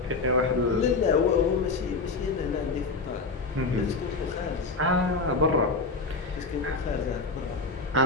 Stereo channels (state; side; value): quieter; right; 3.8 dB